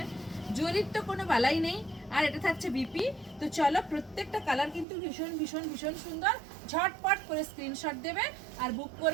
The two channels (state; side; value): drops out; left; at 4.9 s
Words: জরির তো কোনো বালাই নেই। আর এটা থাকছে বিপি। তো চলো, প্রত্যেকটা কালার কিন্তু ভীষণ ভীষণ ভীষণ সুন্দর। ঝটপট করে স্ক্রিনশট দেবে আর বুক